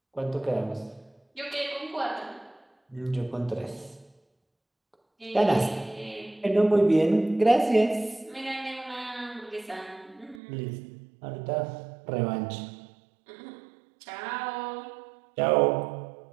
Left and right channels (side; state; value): left; drops out; at 10.4 s